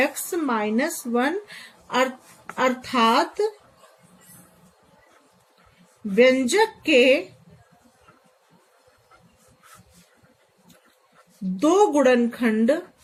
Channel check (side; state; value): both; identical; correlation 1.00